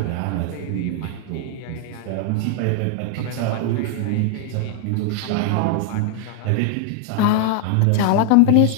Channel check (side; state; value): both; different; correlation 0.00